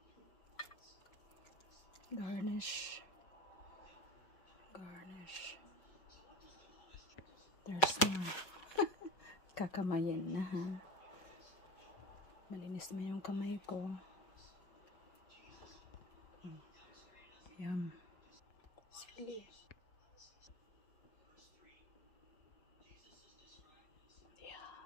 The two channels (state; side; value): late; right; 5.5 ms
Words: Garnish. Garnish. There's more. kakamayin na ha. Malinis na yung kamay ko. Yum. Silly.